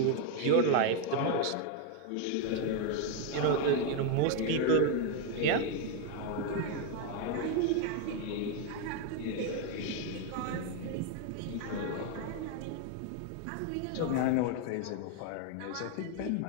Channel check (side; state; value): both; different; correlation 0.01